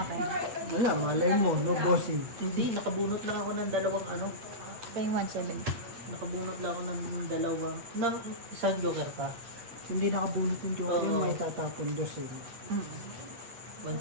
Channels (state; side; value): late; left; 8.4 ms